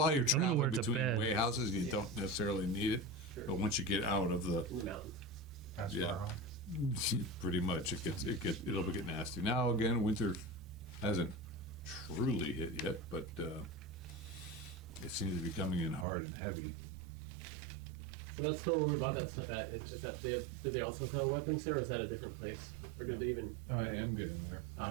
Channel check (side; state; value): left; drops out; at 16.1 s